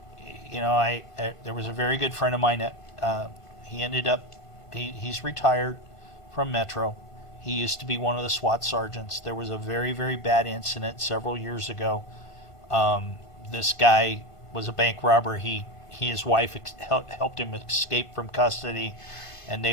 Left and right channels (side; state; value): right; late; 1.5 ms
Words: there was a very good friend of mine that he ended up he's retired from Metro. He used to be one of the SWAT sergeants. There was a very, very bad incident several years ago. This guy was a bank robber. His wife helped him escape from custody, and